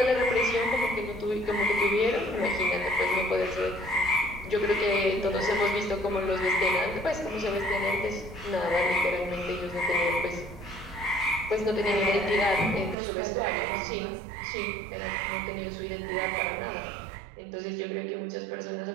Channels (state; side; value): drops out; left; at 13.0 s